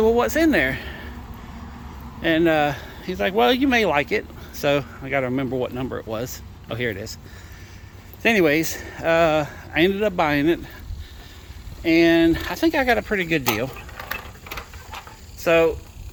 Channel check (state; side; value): identical; both; correlation 1.00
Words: "Well, what's in there?" And he's like, "Well, you may like it." So I got to remember what number it was. Oh, here it is. So anyways, I ended up buying it, and I think I got a pretty good deal. So